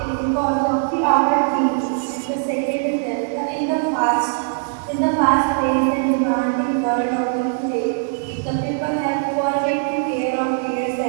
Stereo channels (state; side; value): silent; left; digital silence